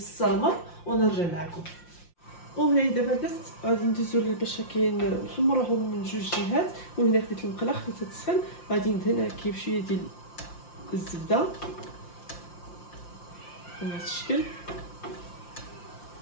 ونرجع معكم. وهنا دابا البنات غادي ندوزو باش كاين نحمرهم من جوج جهات. وهنا خديت المقله خديتها تسخن، غادي ندهن هكا بشويه ديال الزبده بهذا الشكل.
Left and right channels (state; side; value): late; right; 5.7 ms